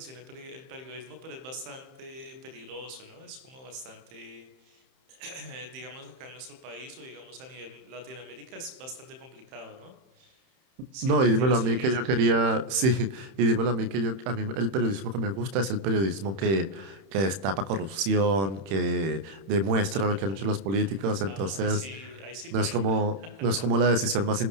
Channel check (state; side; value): late; left; 31 ms